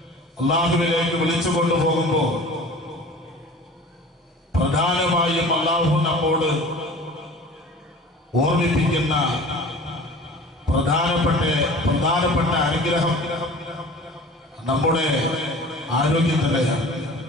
അല്ലാഹുവിലേക്ക് വിളിച്ചു കൊണ്ടുപോകുമ്പോൾ പ്രധാനമായും അല്ലാഹു നമ്മോട് ഓർമ്മിപ്പിക്കുന്ന പ്രധാനപ്പെട്ട അനുഗ്രഹം നമ്മുടെ ആരോഗ്യം തന്നെയാണ്.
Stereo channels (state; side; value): normal; both; correlation 0.42